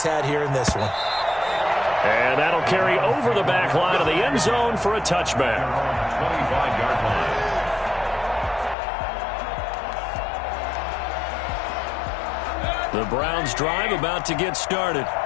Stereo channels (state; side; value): drops out; right; at 8.8 s